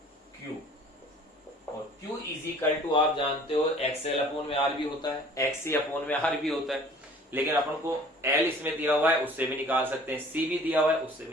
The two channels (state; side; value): normal; both; correlation 0.50